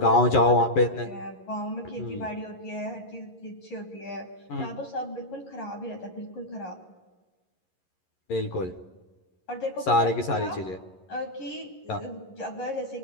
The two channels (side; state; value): right; late; 11 ms